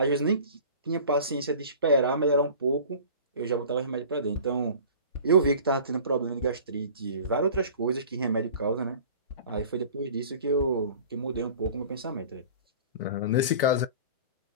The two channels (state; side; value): inverted; both; correlation -0.43